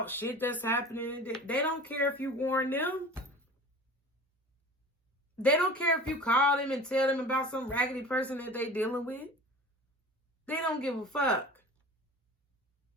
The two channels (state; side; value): normal; both; correlation 0.39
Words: shit that's happening. They don't care if you warn them. They don't care if you call them and tell them about some raggedy person that they dealing with. They don't give a fuck.